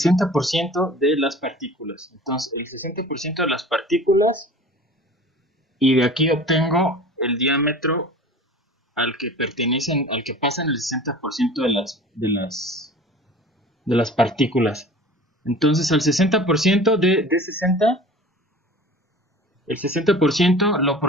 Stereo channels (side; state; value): both; normal; correlation 0.41